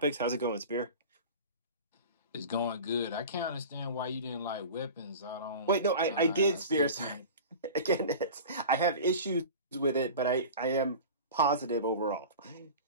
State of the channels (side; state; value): both; inverted; correlation -0.35